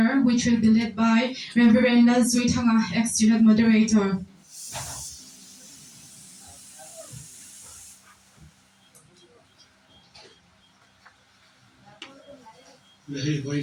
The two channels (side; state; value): both; identical; correlation 1.00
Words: which will be led by Reverend Zuitanga, ex-student moderator. Lehi